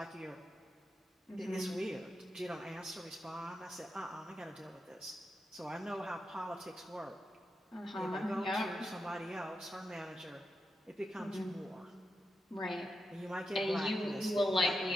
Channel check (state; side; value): normal; both; correlation 0.87